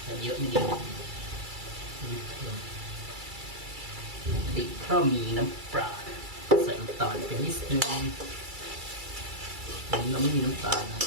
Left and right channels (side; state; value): left; late; 2.3 ms